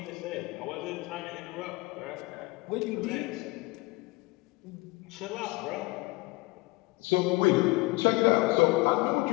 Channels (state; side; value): quieter; right; 22.8 dB